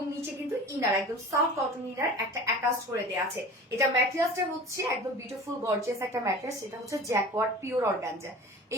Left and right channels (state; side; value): normal; both; correlation 0.39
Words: নিচে কিন্তু ইনার একদম সফট কটন ইনার একটা অ্যাটাচ করে দেওয়া আছে। এটা ম্যাটেরিয়ালসটা হচ্ছে একদম বিউটিফুল গর্জিয়াস একটা ম্যাটেরিয়ালস, এটা হচ্ছে জ্যাকওয়ার্ড পিওর অর্গানজা।